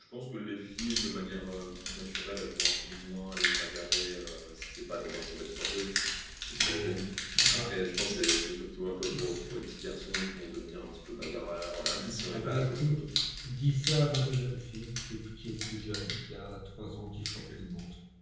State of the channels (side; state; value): both; identical; correlation 1.00